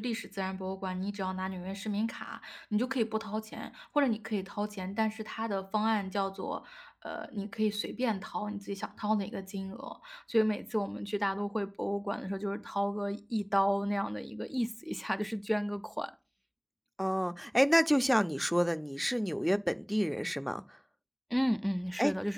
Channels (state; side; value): identical; both; correlation 1.00